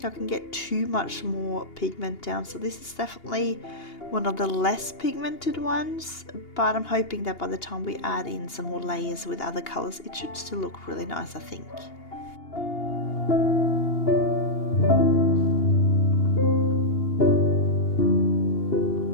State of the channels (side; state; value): right; late; 2.8 ms